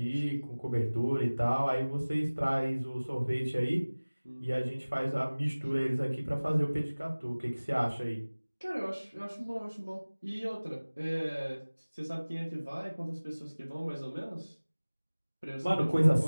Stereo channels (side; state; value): both; inverted; correlation -1.00